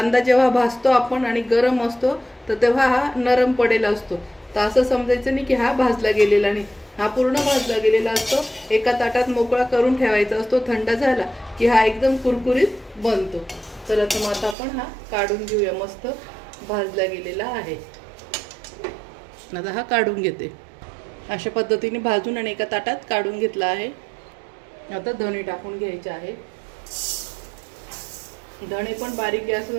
जेव्हा भाजतो आपण आणि गरम असतो तर तेव्हा हा नरम पडेला असतो, तर असं समजायचं नाही की हा भाजला गेलेला नाही, हा पूर्ण भाजला गेलेला असतो। एका ताटात मोकळा करून ठेवायचा असतो, थंड झाला की हा एकदम कुरकुरीत बनतो। तर आता आपण हा काढून घेऊया, मस्त भाजला गेलेला आहे। आता हा काढून घेते। अशा पद्धतीने भाजून आणि एका ताटात काढून घेतला आहे। आता धणे टाकून घ्यायचे आहे। धणे पण बारीक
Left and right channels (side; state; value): left; drops out; at 14.6 s